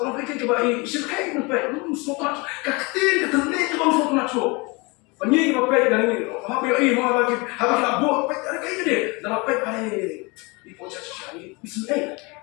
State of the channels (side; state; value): right; quieter; 27.2 dB